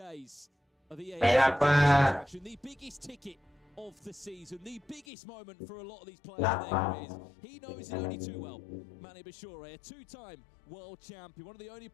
of the Mày lạc EWC quá. action, the biggest ticket of the season, the biggest moment for a lot of these players Lạc in their quá. careers. He knows it only too well. Manny Bashure, a two-time world champion, one of the only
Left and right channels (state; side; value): drops out; right; at 5.1 s